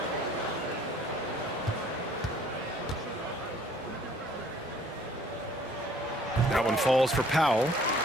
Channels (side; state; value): both; normal; correlation 0.57